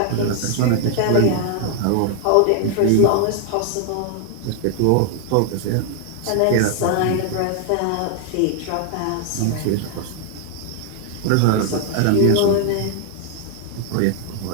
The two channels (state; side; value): different; both; correlation 0.00